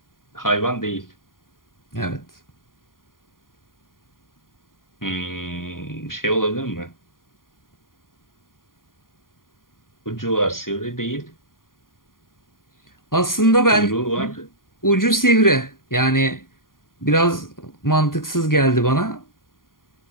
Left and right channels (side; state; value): right; late; 0.91 ms